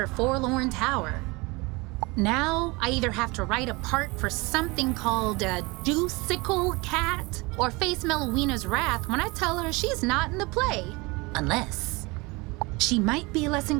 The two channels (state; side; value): quieter; left; 25.2 dB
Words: forlorn tower. Now I either have to write a part for something called a Juicicle Cat or face Melowina's wrath when I tell her she's not in the play. Unless she might be less